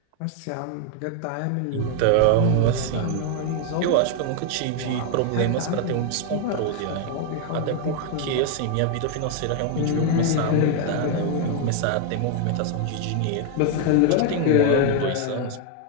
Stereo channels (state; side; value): different; both; correlation 0.00